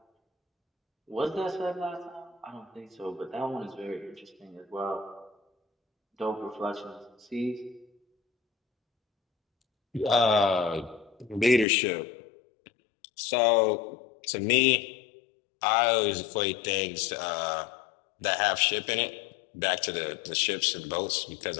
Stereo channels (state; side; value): drops out; right; at 11.7 s